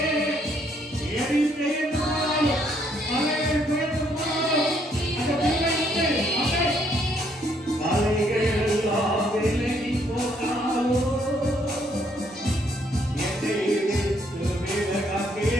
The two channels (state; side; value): normal; both; correlation 0.69